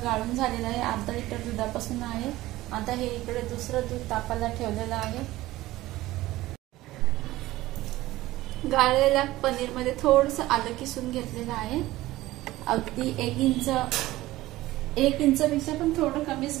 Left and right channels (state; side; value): quieter; left; 17.1 dB